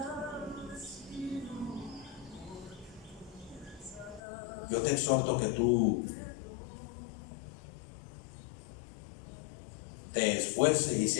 Yo te exhorto que tú te esfuerces y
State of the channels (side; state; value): right; drops out; at 4.2 s